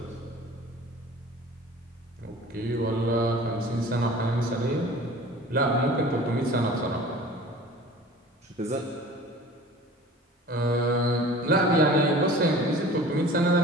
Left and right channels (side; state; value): both; normal; correlation 0.43